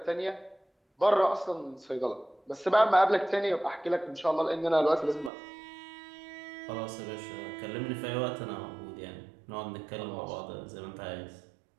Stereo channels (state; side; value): drops out; left; at 5.3 s